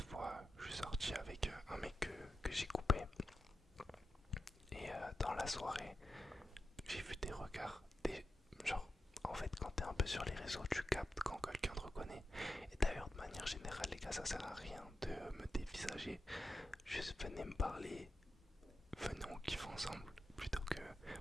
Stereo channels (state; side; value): normal; both; correlation 0.89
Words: fois je suis sorti avec un mec que j'ai coupé. Et dans la soirée, j'ai vu des regards, genre en fait quand t'es un peu sur les réseaux, tu captes quand quelqu'un te reconnaît. Et d'ailleurs de manière générale les gars, ça sert à rien de me dévisager. Juste venez me parler, venez on kiffe ensemble, plutôt que